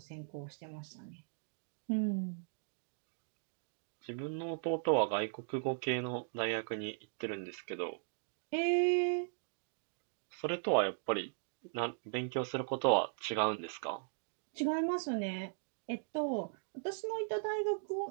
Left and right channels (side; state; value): left; silent; digital silence